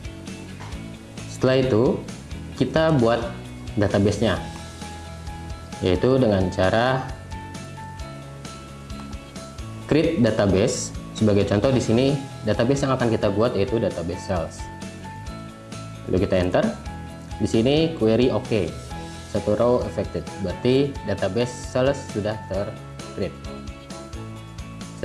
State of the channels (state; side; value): identical; both; correlation 1.00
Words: Setelah itu, kita buat database-nya, yaitu dengan cara create database. Sebagai contoh di sini, database yang akan kita buat yaitu database sales. Lalu kita enter. Di sini query OK. Satu row affected, berarti database sales sudah ter-create.